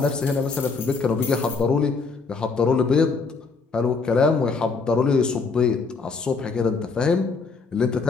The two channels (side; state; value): right; quieter; 4.5 dB